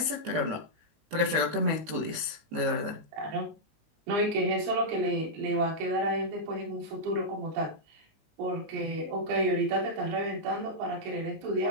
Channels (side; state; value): left; late; 19 ms